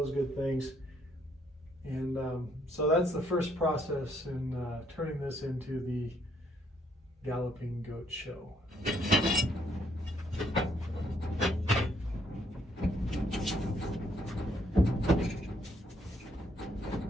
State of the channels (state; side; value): normal; both; correlation 0.69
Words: good things. And so that's the first process in turning this into the Galloping Goat Show.